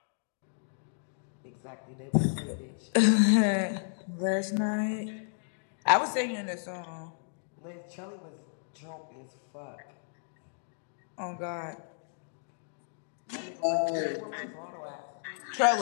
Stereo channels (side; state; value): right; silent; digital silence